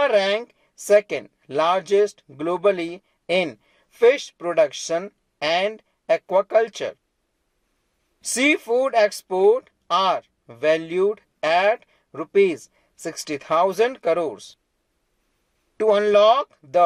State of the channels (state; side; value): identical; both; correlation 1.00